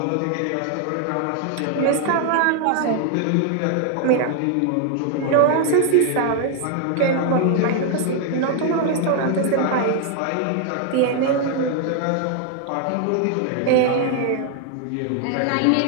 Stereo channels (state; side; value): different; both; correlation 0.00